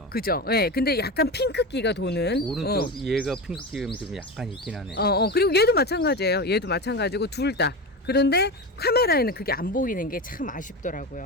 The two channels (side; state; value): both; normal; correlation 0.22